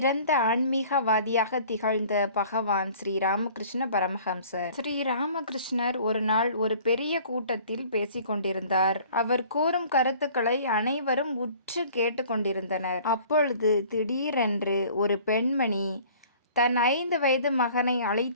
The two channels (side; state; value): both; inverted; correlation -0.50